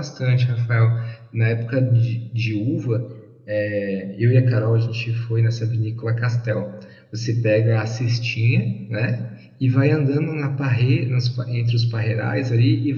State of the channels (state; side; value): identical; both; correlation 1.00